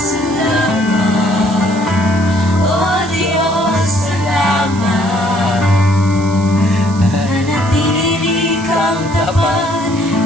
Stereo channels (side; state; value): right; noise; hiss, 17 dB below the sound